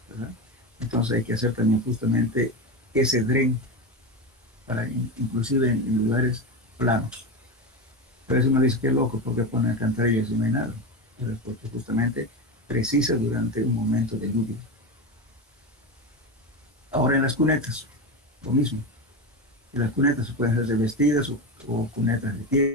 ¿verdad? Entonces hay que hacer también justamente ese dren, para inclusive en lugares planos. Pero eso uno dice, qué loco, porque ponen alcantarillas y no hay nada. Pero porque justamente precisa durante un momento de lluvia. Ahora en las cunetas, lo mismo. En las cunetas se pueden hacer revestidas o cunetas de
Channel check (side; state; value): both; normal; correlation 0.18